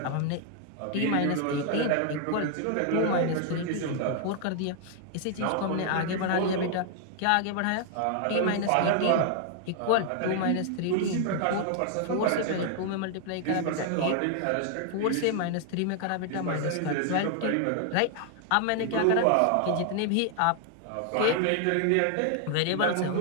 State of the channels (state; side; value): different; both; correlation 0.00